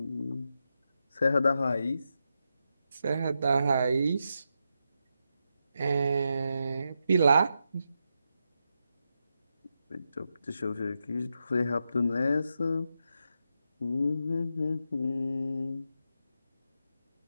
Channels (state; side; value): inverted; both; correlation -0.86